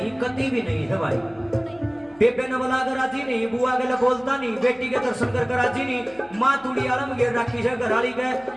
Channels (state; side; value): noise; left; hum, 27 dB below the sound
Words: कति भी नहीं है भाई बेबे ने बोला कर राजी नहीं बुआ के लिए बोलता नहीं बेटी के दर्शन कर राजी नहीं माँ तुड़ी आलम घेर रखी है घरवाली के